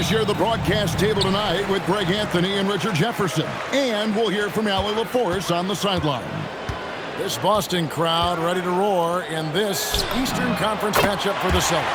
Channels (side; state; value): both; identical; correlation 1.00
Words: share the broadcast table tonight with Greg Anthony and Richard Jefferson. And we'll hear from Allie LaForce on the sideline. This Boston crowd ready to roar in this Eastern Conference matchup for the